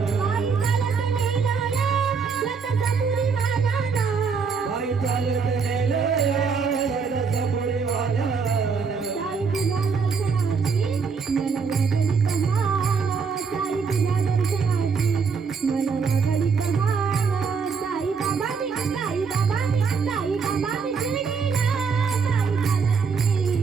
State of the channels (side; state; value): left; quieter; 5.5 dB